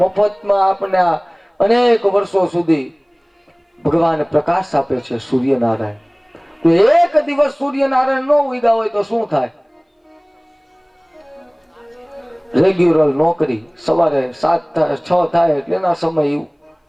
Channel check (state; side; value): identical; both; correlation 1.00